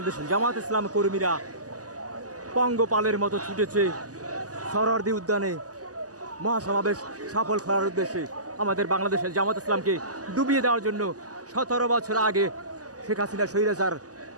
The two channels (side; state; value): left; late; 0.67 ms